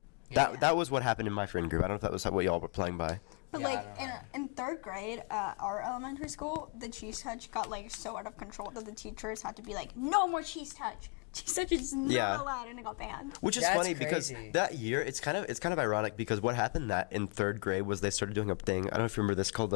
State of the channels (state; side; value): quieter; right; 37.3 dB